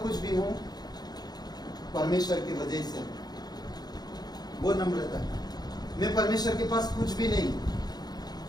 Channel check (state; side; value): late; right; 0.19 ms